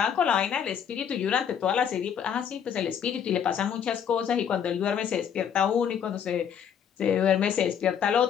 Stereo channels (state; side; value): quieter; right; 8.2 dB